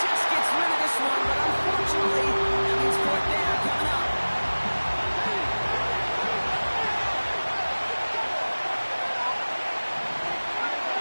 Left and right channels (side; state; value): both; inverted; correlation -1.00